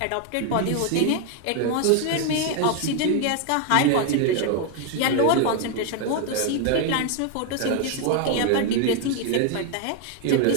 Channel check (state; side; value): different; both; correlation 0.01